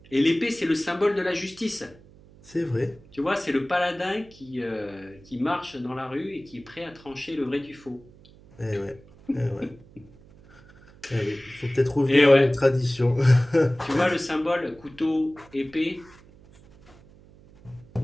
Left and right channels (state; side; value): noise; right; hum, 24 dB below the sound